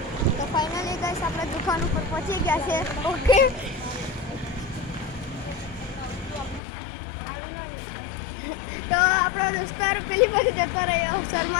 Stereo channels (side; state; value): right; drops out; at 6.6 s